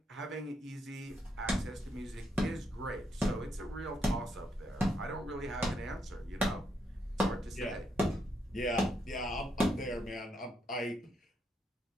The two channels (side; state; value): both; normal; correlation 0.78